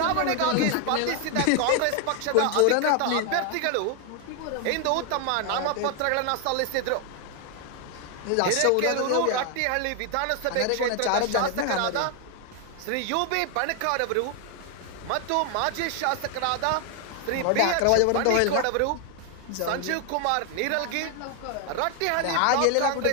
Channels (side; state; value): both; different; correlation 0.01